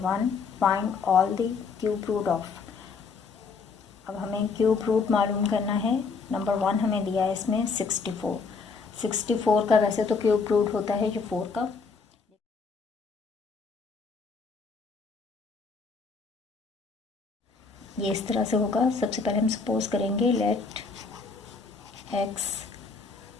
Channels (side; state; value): right; quieter; 4.8 dB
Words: 1, find all the cube root of. अब हमें क्यूब रूट मालूम करना है। नंबर 1 हमें दिया है इसमें 64। 64 का वैसे तो क्यूब रूट होता है जो 4 का। ये इस तरह से होगा। सबसे पहले हम सपोज करेंगे let x